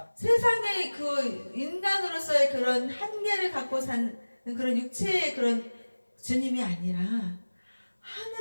세상의 그 인간으로서의 그런 한계를 갖고 사는 그런 육체의 그런 주님이 아니라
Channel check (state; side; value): inverted; both; correlation -1.00